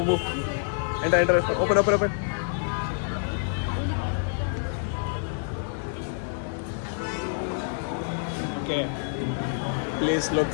Enter. Open. Okay. Place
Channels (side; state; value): right; silent; digital silence